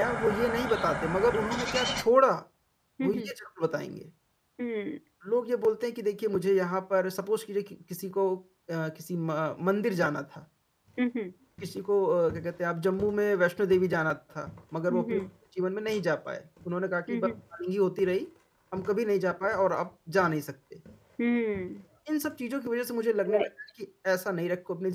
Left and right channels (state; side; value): identical; both; correlation 1.00